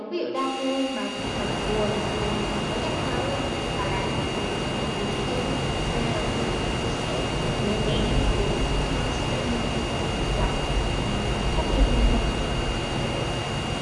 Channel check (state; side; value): identical; both; correlation 1.00